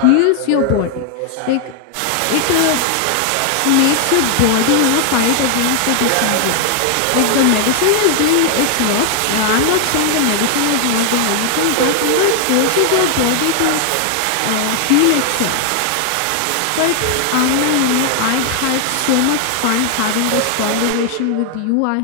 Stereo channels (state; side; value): different; both; correlation 0.00